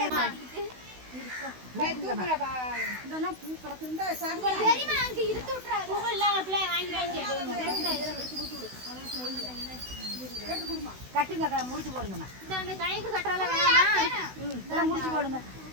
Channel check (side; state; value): left; late; 16 ms